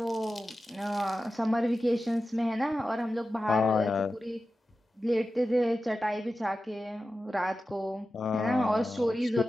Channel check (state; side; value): normal; both; correlation 0.93